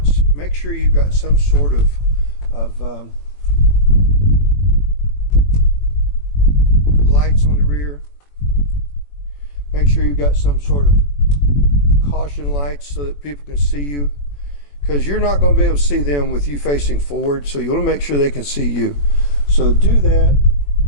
make sure you've got some sort of lights on the rear. Make sure you've got some sort of caution lights so that people can see you, because you're not going to be able to see them with you facing forward, so you want to make sure they can see you. So do that,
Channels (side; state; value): right; late; 21 ms